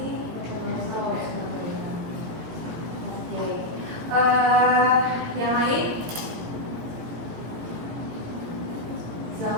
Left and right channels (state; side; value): late; left; 17 ms